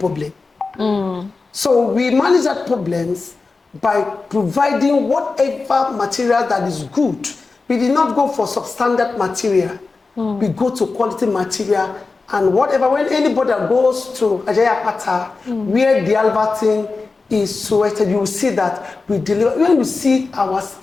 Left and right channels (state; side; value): quieter; right; 4.0 dB